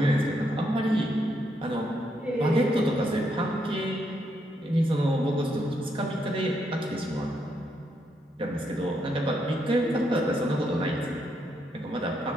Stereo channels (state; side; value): normal; both; correlation 0.78